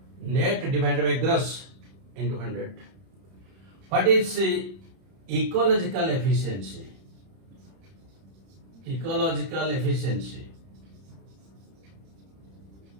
Net divided by gross into 100. What is ecological efficiency?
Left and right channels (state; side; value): late; left; 31 ms